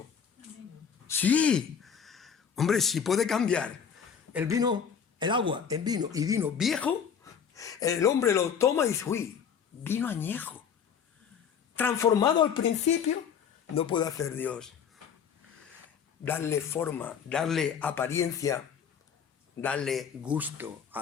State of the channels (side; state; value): right; quieter; 7.3 dB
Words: Sí. Hombre, si puede cambiar el vino, el agua en vino y vino viejo, el hombre lo toma y dice, uy, vino añejo. Transformado al principio, no puede hacer Dios. Darle forma, darle apariencia, darle gusto